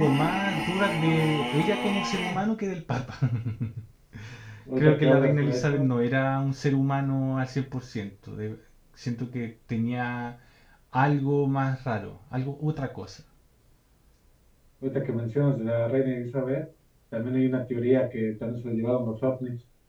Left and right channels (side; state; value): both; identical; correlation 1.00